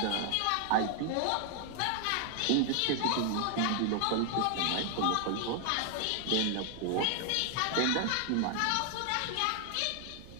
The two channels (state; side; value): different; both; correlation 0.00